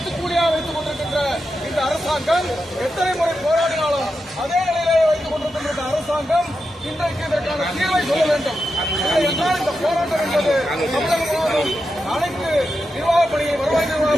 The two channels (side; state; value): both; normal; correlation 0.88